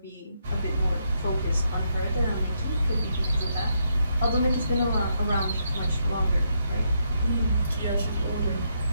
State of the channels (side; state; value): both; inverted; correlation -0.78